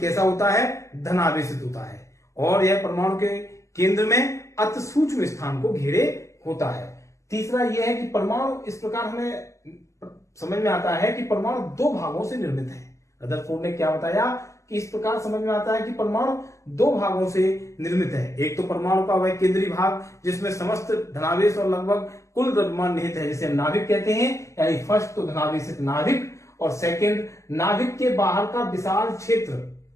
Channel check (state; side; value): late; right; 0.15 ms